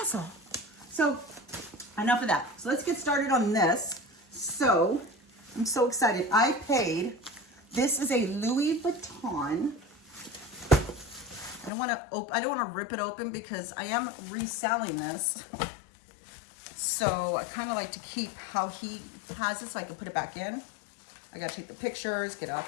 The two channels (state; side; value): drops out; right; at 11.7 s